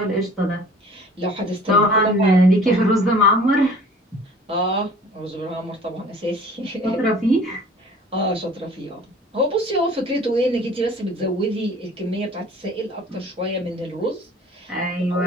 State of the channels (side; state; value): both; normal; correlation 0.48